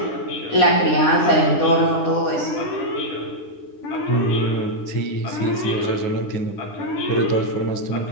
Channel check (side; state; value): right; late; 9.8 ms